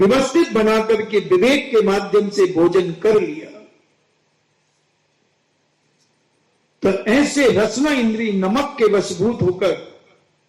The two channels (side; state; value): both; identical; correlation 1.00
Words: बना करके विवेक के माध्यम से भोजन कर लिया। तो ऐसे रसना इंद्री नमक के वशभूत होकर